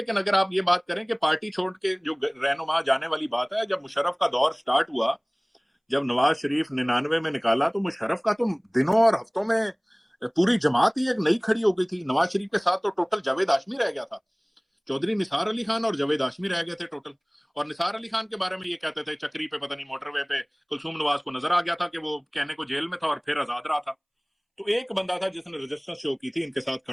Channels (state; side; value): identical; both; correlation 1.00